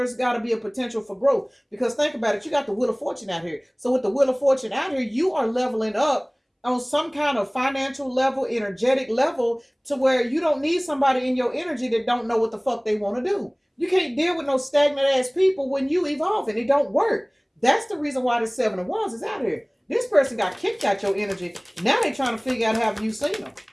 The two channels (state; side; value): identical; both; correlation 1.00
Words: got to be a potential for growth. Because think about it, you got the Wheel of Fortune out here. So with the Wheel of Fortune out here, you are leveling up on some kind of financial level, energetic level, to where you don't need somebody in your energy that don't know what the fuck they want to do. You can't deal with no stagnant ass people when you evolve, and it don't work. That's the reason why the Seven of Wands is out here. This person got kicked out your energy. Now they trying to figure out, have you seen them?